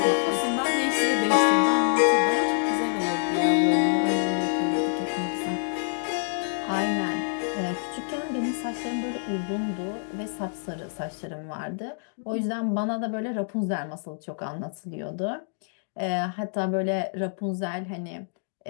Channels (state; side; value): silent; right; digital silence